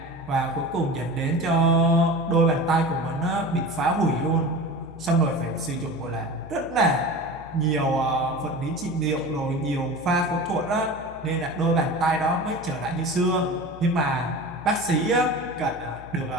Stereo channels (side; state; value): left; noise; hum, 18 dB below the sound